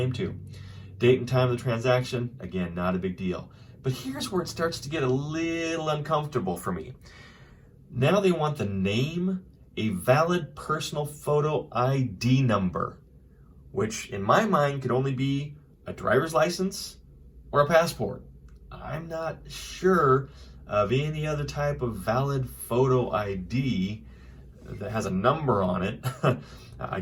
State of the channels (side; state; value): both; identical; correlation 1.00